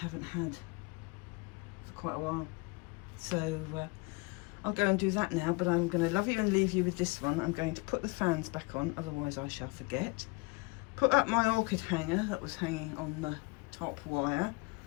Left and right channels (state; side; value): quieter; right; 26.4 dB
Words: had for quite a while. So I'll go and do that now, but I'm going to love you and leave you with this one. I'm going to put the fans back on, otherwise I shall forget. Put up my orchid hanger that was hanging on the top wire,